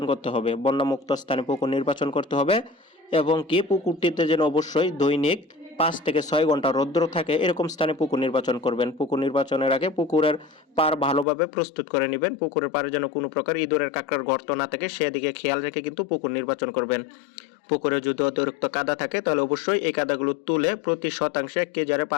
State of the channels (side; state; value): right; drops out; at 11.2 s